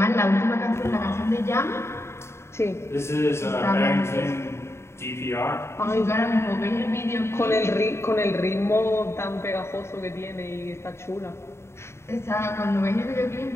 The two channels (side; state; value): right; late; 0.13 ms